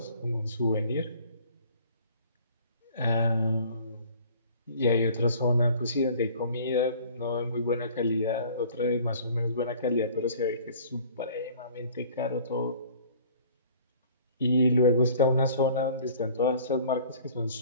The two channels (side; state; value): both; inverted; correlation -0.50